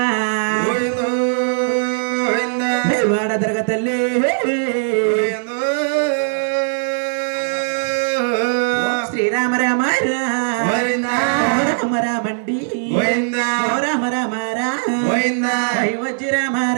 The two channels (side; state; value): left; silent; 63 dB below the other